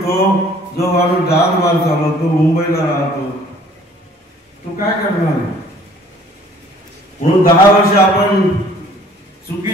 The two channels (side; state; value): both; normal; correlation 0.55